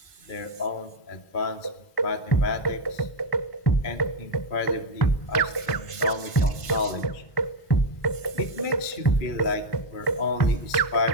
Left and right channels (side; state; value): right; late; 1.5 ms